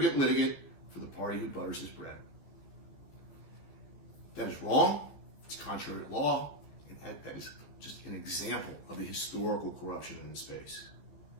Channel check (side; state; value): right; late; 13 ms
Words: litigant for the party who butters his bread. That is wrong. It's contrary to law. And that is just an example of the historical corruption in this space.